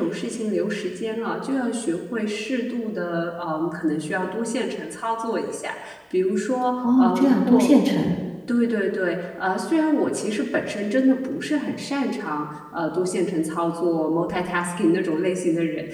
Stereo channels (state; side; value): identical; both; correlation 1.00